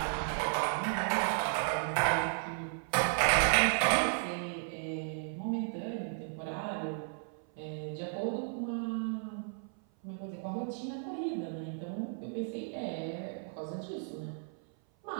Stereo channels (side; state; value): left; silent; 55 dB below the other